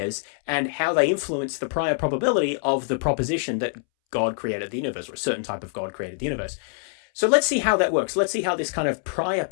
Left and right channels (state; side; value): silent; right; 62 dB below the other